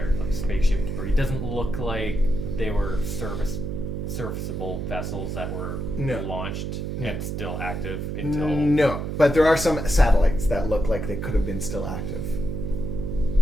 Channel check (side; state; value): right; noise; hum, 3 dB below the sound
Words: like spaceship debris. It doesn't look like they were serviceable vessels that were No. launched No. and still active until... No, but there are some satellites that look like they could have been still active.